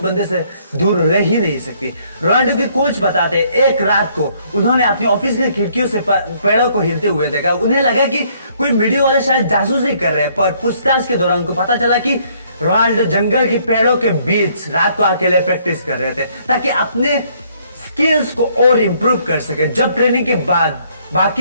बंदे से दूर रह ही नहीं सकती। रोनाल्डो के कोच बताते हैं एक रात को उन्होंने अपनी ऑफिस की खिड़कियों से पेड़ों को हिलते हुए देखा। उन्हें लगा कि कोई मीडिया वाले शायद जासूसी कर रहे हैं, पर पूछताछ के दौरान उनको पता चला कि रोनाल्डो जंगल के पेड़ों के बीच रात को अकेले प्रैक्टिस कर रहे थे ताकि अपने स्किल्स को और इम्प्रूव कर सके। जब ट्रेनिंग के बाद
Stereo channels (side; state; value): both; inverted; correlation -0.66